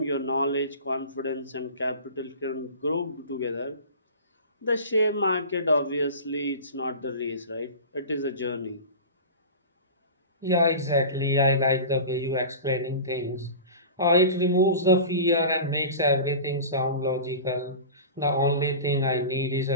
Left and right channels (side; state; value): both; inverted; correlation -0.33